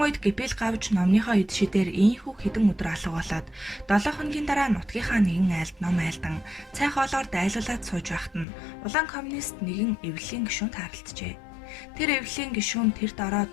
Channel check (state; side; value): drops out; right; at 8.5 s